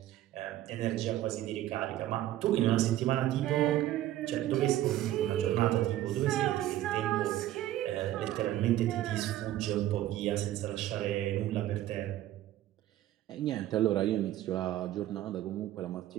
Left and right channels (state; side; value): quieter; left; 13.7 dB